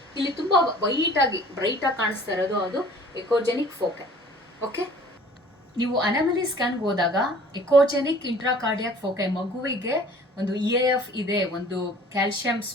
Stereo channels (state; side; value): normal; both; correlation 0.50